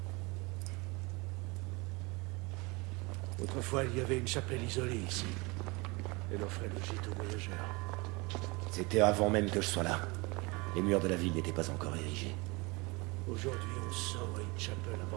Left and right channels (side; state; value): left; quieter; 26.2 dB